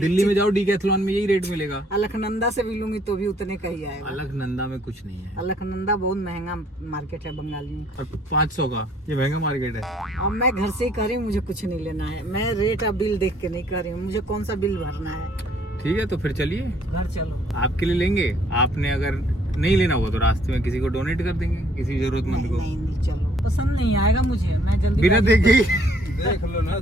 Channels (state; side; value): normal; both; correlation 0.63